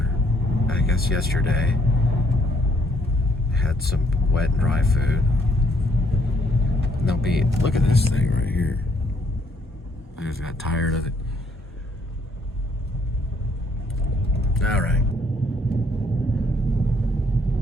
I guess yesterday. Had some wet and dry food. And they'll be, look at this thing right here. I just got tired of it. All right.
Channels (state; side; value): normal; both; correlation 0.68